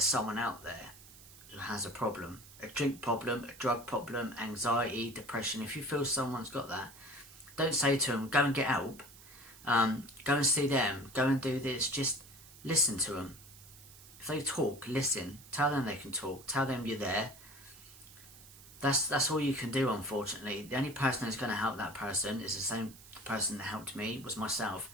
someone out there who has a problem, a drink problem, a drug problem, anxiety, depression, if you feel someone's got that, don't say to them, go and get help, go and see them, go and do this. Just listen to them. If they talk, listen. Tell them they can talk. Tell them you're there. That's all you can do, unfortunately. The only person who's going to help that person is the same person that helped me, was myself.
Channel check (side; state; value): right; noise; hiss, 20 dB below the sound